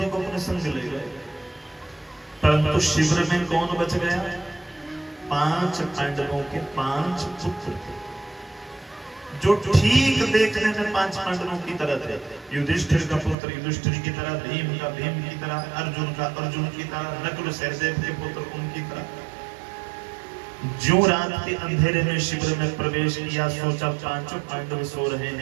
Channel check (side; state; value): left; drops out; at 13.4 s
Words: को अपने संग ले गए, परंतु शिविर में कौन बच गया? 5 पांडवों के 5 पुत्र थे, जो ठीक देखने में 5 पांडवों की तरह थे। युधिष्ठिर का पुत्र युधिष्ठिर की तरह, भीम का भीम की तरह, अर्जुन का अर्जुन की तरह, नकुल सहदेव के पुत्र उनकी तरह। जो रात के अंधेरे में शिविर में प्रवेश किया, सोचा 5 पांडव सो रहे